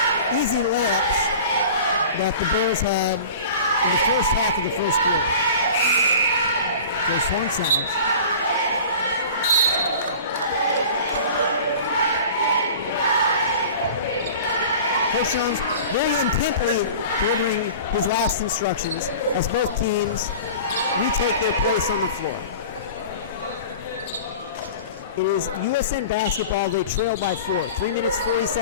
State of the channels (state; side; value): inverted; both; correlation -0.40